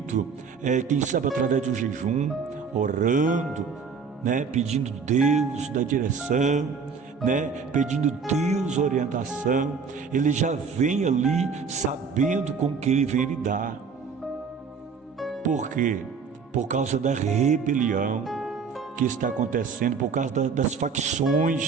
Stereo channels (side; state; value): left; quieter; 5.6 dB